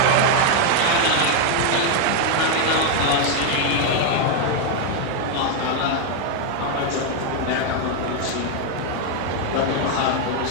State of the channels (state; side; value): different; both; correlation 0.01